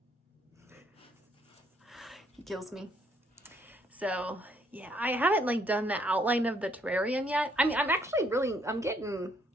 He kills me. So yeah, I haven't like done the outline of the terrarium yet. I mean, I'm getting...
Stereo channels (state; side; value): normal; both; correlation 0.68